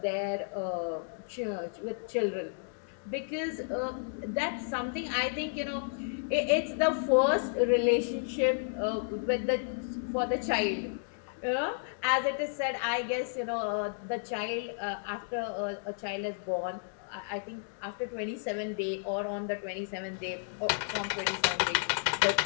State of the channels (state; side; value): silent; right; digital silence